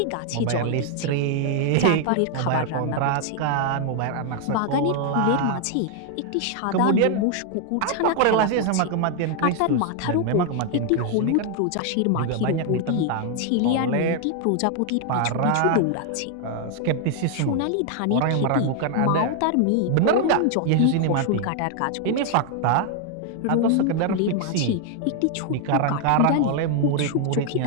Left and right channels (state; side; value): different; both; correlation 0.00